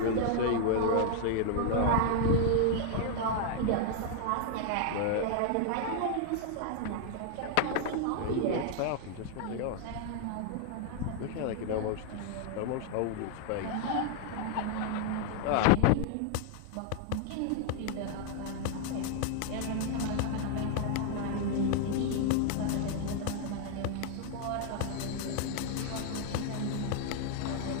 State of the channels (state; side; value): different; both; correlation 0.00